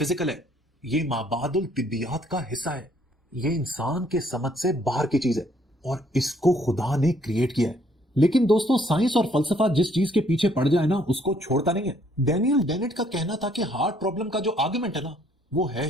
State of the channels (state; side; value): normal; both; correlation 0.65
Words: है, ये माबादुल तिब्बियात का हिस्सा है, ये इंसान के समझ से बाहर की चीज है और इसको खुदा ने क्रिएट किया है। लेकिन दोस्तों, साइंस और फलसफा जिस चीज के पीछे पड़ जाए ना, उसको छोड़ता नहीं है। डैनियल डेनेट का कहना था कि हार्ड प्रॉब्लम का जो आर्गुमेंट है ना, वो है